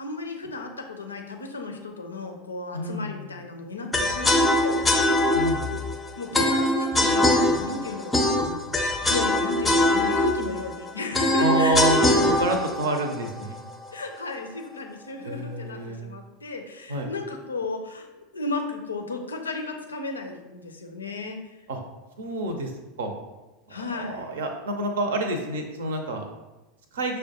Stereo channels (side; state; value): both; normal; correlation 0.33